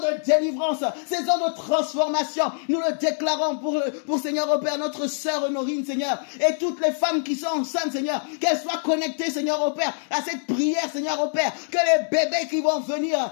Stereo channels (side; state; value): right; silent; digital silence